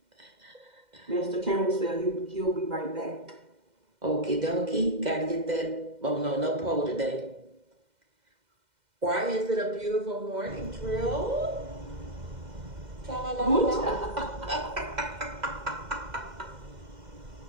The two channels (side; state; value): left; late; 2.1 ms